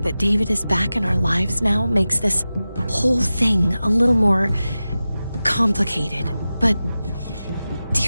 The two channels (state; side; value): inverted; both; correlation -0.94